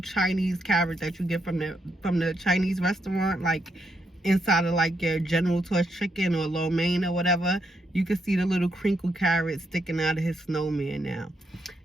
carrot that you get from the Chinese restaurant. Like, inside of like your General Tso's chicken or lo mein or whatever, you can see the little crinkle carrot sticking out of his snowman now.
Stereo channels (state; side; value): normal; both; correlation 0.79